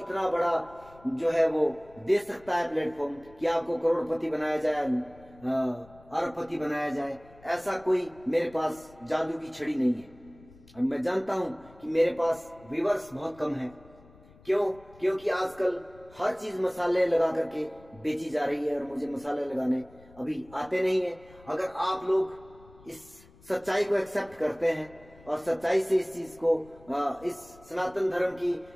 बड़ा जो है वो दे सकता है प्लेटफॉर्म कि आपको करोड़पति बनाया जाए, अरबपति बनाया जाए। ऐसा कोई मेरे पास जादू की छड़ी नहीं है। और मैं जानता हूं कि मेरे पास व्यूअर्स बहुत कम है। क्योंकि आजकल हर चीज मसाले लगा करके बेची जा रही है और मुझे मसाले लगाने अभी आते नहीं है। अगर आप लोग इस सच्चाई को एक्सेप्ट करते हैं और सच्चाई से इस चीज को, इस सनातन धर्म की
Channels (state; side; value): noise; left; rumble, 24 dB below the sound